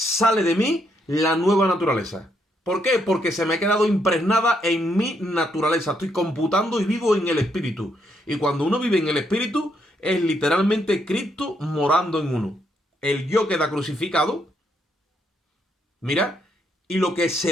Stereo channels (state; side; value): normal; both; correlation 0.75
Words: de mí la nueva naturaleza. ¿Por qué? Porque se me ha quedado impregnada en mi naturaleza. Estoy computando y vivo en el espíritu. Y cuando uno vive en el espíritu, es literalmente Cristo morando en uno. El yo queda crucificado, mira, y lo que